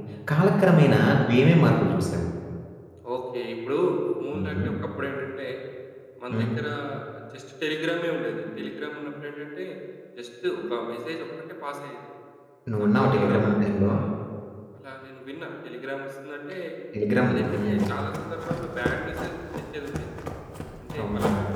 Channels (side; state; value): both; identical; correlation 1.00